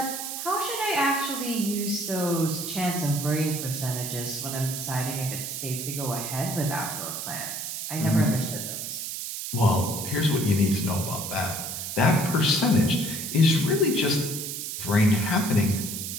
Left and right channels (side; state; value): right; noise; hiss, 5 dB below the sound